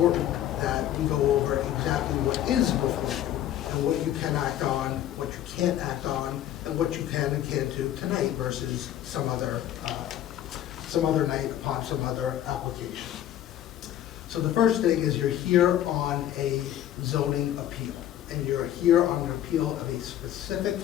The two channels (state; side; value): quieter; right; 11.8 dB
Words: that we go over exactly what is before you, and what you can act on, what you can't act on, and what you can and can't do tonight versus some other night upon some other application. So the first thing is you're here on a zoning appeal, and you're here on an appeal of a specific